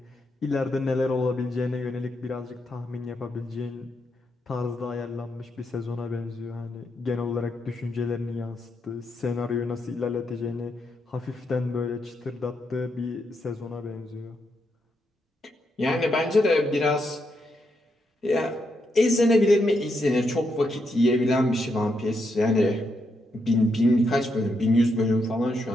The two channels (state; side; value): normal; both; correlation 0.81